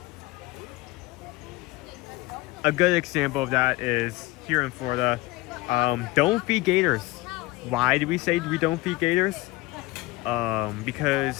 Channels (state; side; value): quieter; right; 19.7 dB